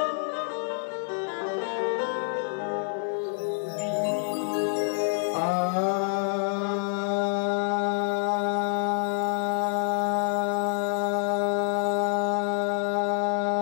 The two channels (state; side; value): silent; right; 60 dB below the other